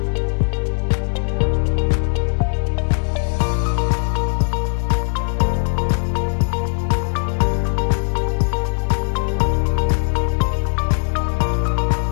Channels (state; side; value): silent; right; 58 dB below the other